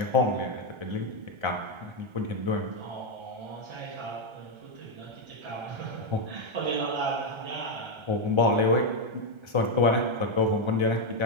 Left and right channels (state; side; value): late; left; 1.3 ms